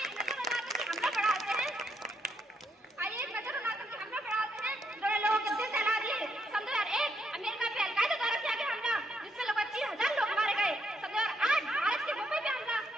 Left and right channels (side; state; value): both; normal; correlation 0.76